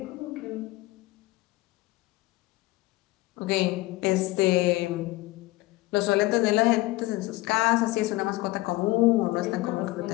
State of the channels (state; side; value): quieter; right; 19.7 dB